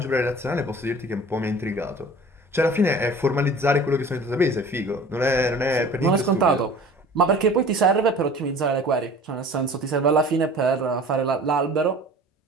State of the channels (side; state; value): both; normal; correlation 0.44